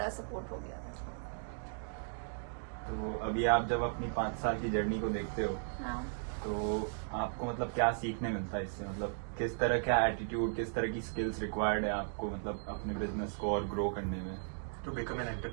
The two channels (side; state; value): left; silent; digital silence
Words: सपोर्ट हो गया। तो अभी आप जब अपनी 5 साल की जर्नी को देखते हो, हाँ। तो आपको मतलब क्या सीखने मिलता है इससे? मतलब किस तरह का एटीट्यूड, किस तरह की स्किल्स रिक्वायर्ड है आपको मतलब अपने बिजनेस को और ग्रो करने में? To become an